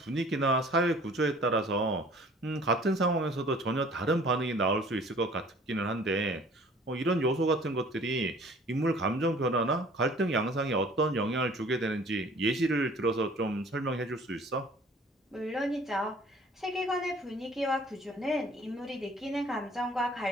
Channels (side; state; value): both; normal; correlation 0.51